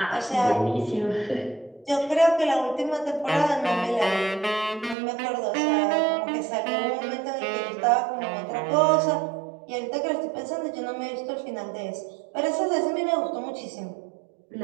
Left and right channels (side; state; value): left; drops out; at 5.0 s